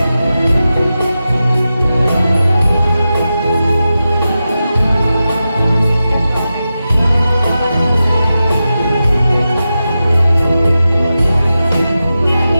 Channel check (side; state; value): both; inverted; correlation -0.92